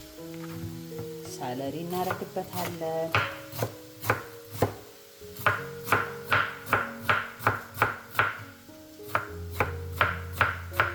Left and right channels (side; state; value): both; identical; correlation 1.00